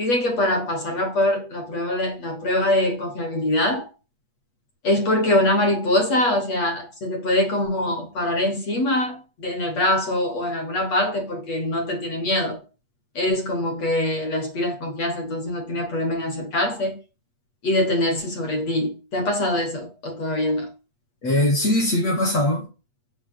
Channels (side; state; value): right; late; 8.3 ms